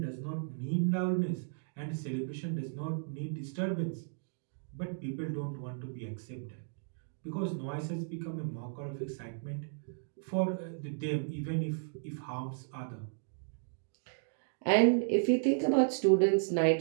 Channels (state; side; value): silent; left; digital silence